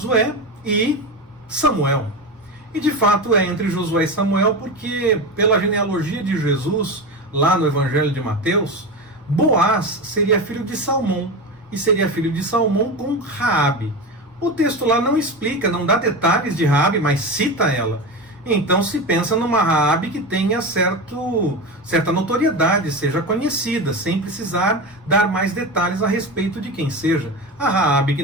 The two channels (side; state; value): both; normal; correlation 0.22